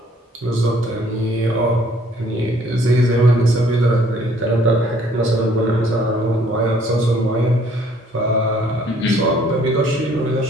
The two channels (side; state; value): both; normal; correlation 0.61